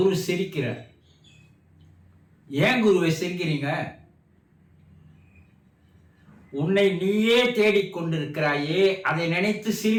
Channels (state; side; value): identical; both; correlation 1.00